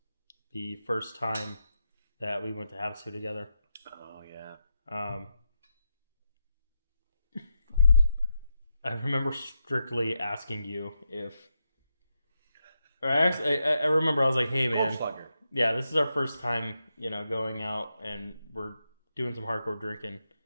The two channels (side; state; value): both; inverted; correlation -0.85